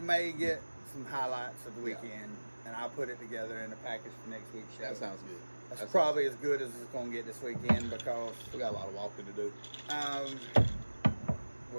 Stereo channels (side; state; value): both; inverted; correlation -1.00